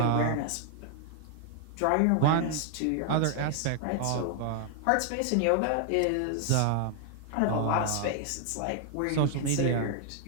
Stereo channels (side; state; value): both; different; correlation 0.00